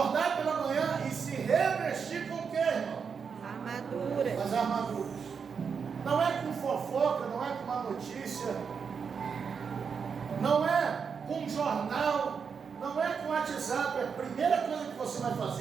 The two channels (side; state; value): left; quieter; 6.2 dB